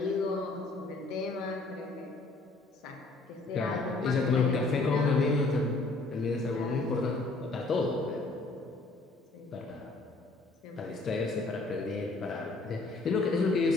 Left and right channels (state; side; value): quieter; right; 3.3 dB